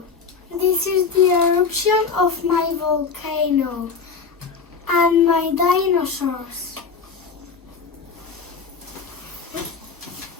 This is the eruption of my volcano and my dinosaurs.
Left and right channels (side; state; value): right; quieter; 5.4 dB